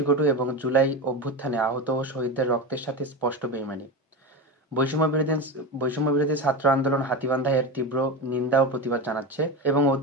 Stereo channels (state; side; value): normal; both; correlation 0.21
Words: এবং জুলাই অভ্যুত্থানে আহত ও শহীদদের রক্তের সাথে স্পষ্ট বেইমানি। বৈষম্যবিরোধী ছাত্র আন্দোলন হাতীবান্ধা এর তীব্র নিন্দা ও প্রতিবাদ জানাচ্ছে এবং